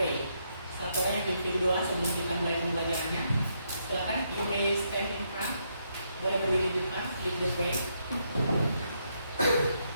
Satu orang yang pimpin doa sebelum kita mulai pembelajarannya. Silakan, you may stand in front. Boleh berdiri di depan, lead the prayer.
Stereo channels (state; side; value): inverted; both; correlation -0.77